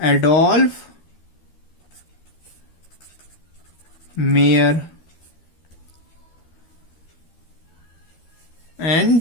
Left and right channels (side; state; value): right; late; 13 ms